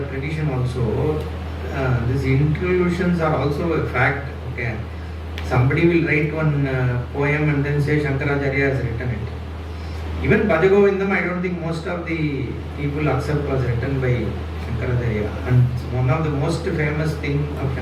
tradition also. These interlusions are also a fact. Okay. Somebody will write one poem and then say Shankaracharya has written it. Even Bhajagovindam, I don't think most of the people accept was written by Shankaracharya. And one of the most famous thing of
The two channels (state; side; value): identical; both; correlation 1.00